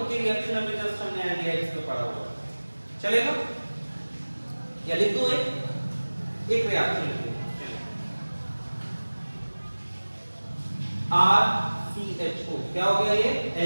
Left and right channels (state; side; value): inverted; both; correlation -1.00